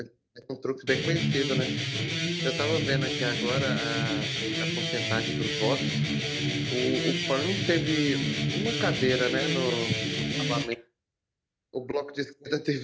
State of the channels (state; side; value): identical; both; correlation 1.00